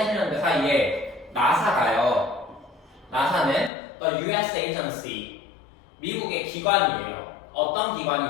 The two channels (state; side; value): drops out; right; at 3.7 s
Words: 사이에 나사가요. 나사는 the US agency, 미국의 기관이에요. 어떤